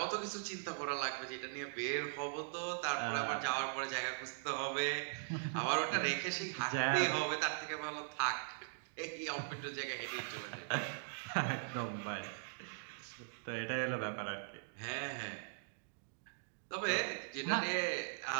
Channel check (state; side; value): silent; left; digital silence